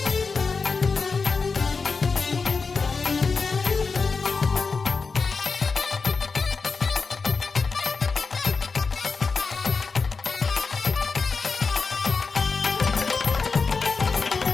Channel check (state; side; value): quieter; right; 4.7 dB